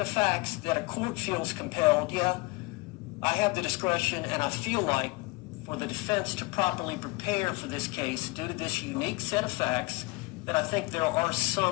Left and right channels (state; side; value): quieter; right; 24.9 dB